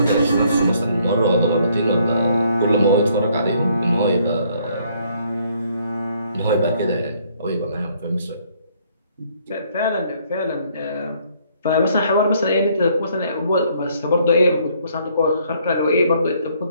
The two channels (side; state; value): both; inverted; correlation -0.65